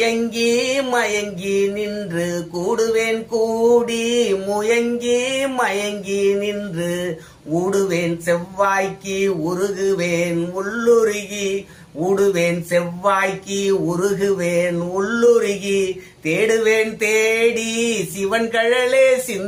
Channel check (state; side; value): identical; both; correlation 1.00